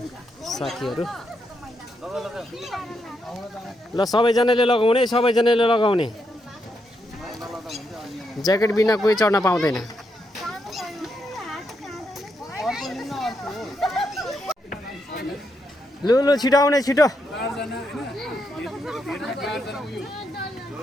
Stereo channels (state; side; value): normal; both; correlation 0.81